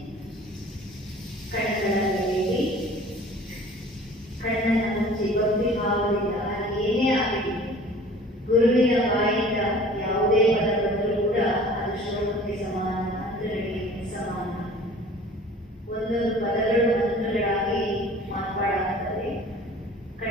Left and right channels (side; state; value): both; normal; correlation 0.46